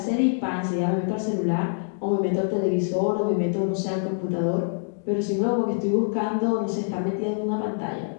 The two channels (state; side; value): silent; right; digital silence